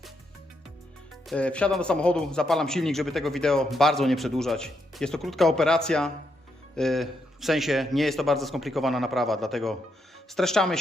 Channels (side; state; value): both; normal; correlation 0.80